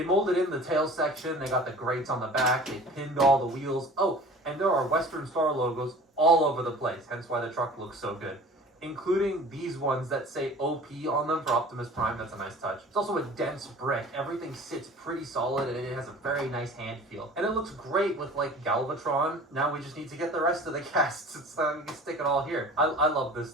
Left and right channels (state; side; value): normal; both; correlation 0.43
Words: molded in the tail section. They got the grates on the back. They pinned all the wheels. Oh, and there are Western Star logos all over the place, hence why the truck looks so good. Including these ones that say OP on them for Optimus Prime. That's a nice touch. It's also a dense brick. Everything sits pretty solid, and it has a very nice hand feel. And it looks great with like Galvatron. Now we just need to get the rest of the casts so we can stick it all here. I love this